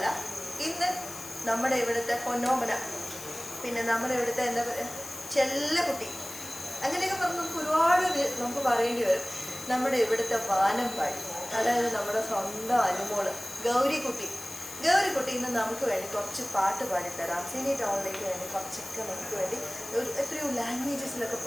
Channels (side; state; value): left; noise; hiss, 12 dB below the sound